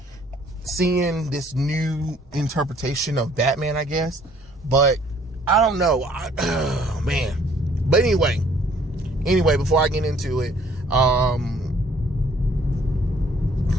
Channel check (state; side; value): normal; both; correlation 0.60